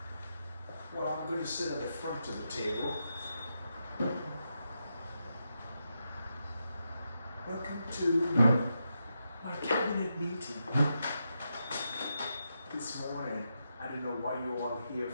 Well, I'm going to sit at the front of the table. Welcome to my cabinet meeting. This morning, I don't know what you're all here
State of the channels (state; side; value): inverted; both; correlation -0.85